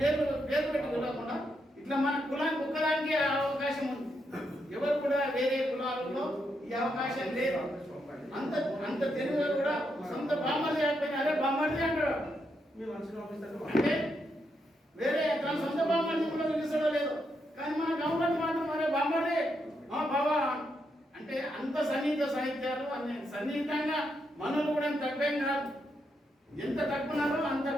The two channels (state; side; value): normal; both; correlation 0.81